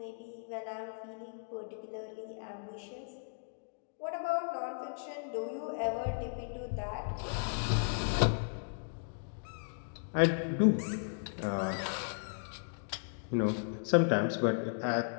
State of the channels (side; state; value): right; silent; digital silence